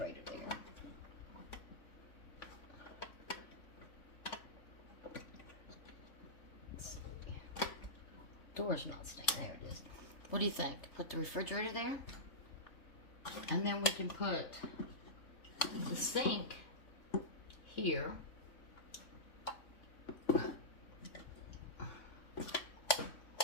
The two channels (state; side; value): late; right; 3.5 ms